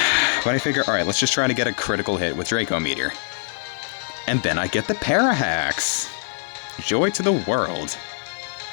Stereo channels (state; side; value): silent; right; digital silence